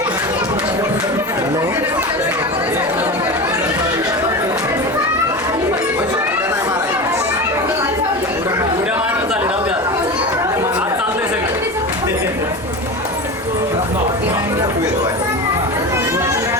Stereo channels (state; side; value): normal; both; correlation 0.27